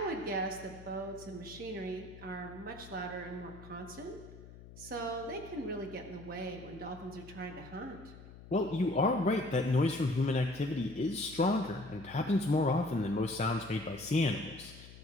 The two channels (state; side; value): noise; left; hum, 17 dB below the sound